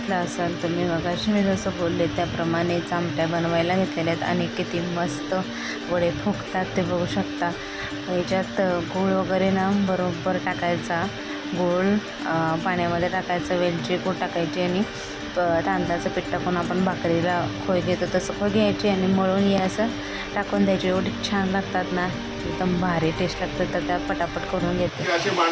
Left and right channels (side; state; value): both; identical; correlation 1.00